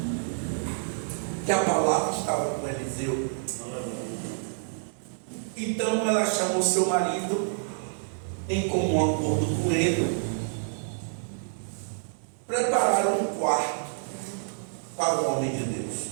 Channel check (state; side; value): silent; left; 59 dB below the other